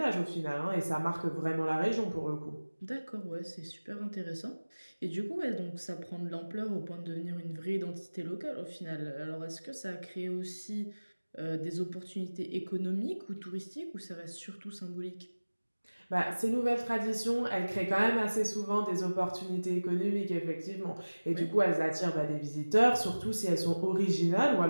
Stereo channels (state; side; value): inverted; both; correlation -1.00